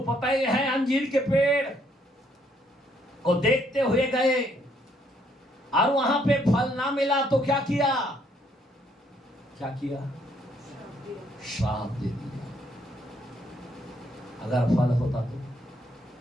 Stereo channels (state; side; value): normal; both; correlation 0.69